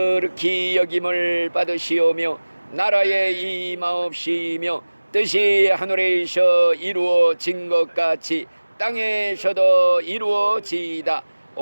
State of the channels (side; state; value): both; inverted; correlation -1.00